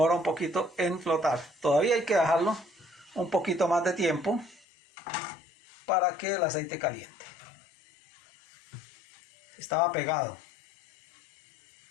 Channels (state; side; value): drops out; right; at 4.7 s